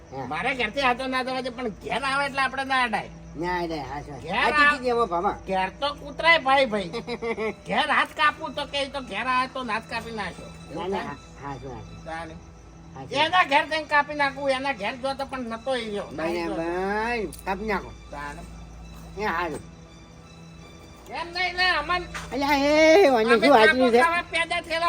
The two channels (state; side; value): identical; both; correlation 1.00